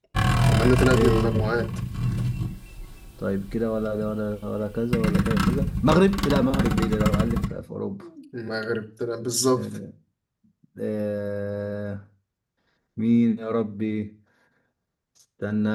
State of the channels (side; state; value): both; identical; correlation 1.00